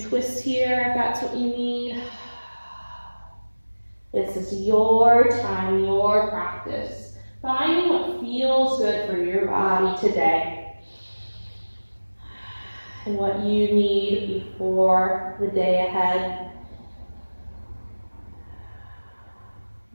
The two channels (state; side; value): inverted; both; correlation -1.00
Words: twists here if that's what you need. This is your time, your practice. Finding what feels good for your body today. And what you need before the day ahead.